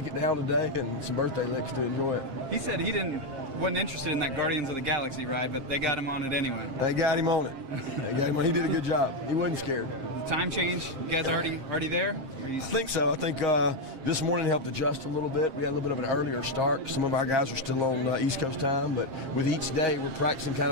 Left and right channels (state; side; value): late; left; 7.5 ms